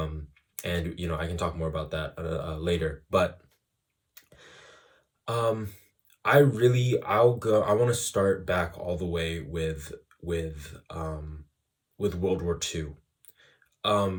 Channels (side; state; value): both; identical; correlation 1.00